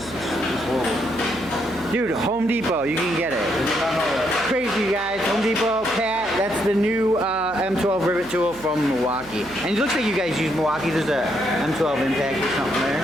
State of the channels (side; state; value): right; noise; hum, 20 dB below the sound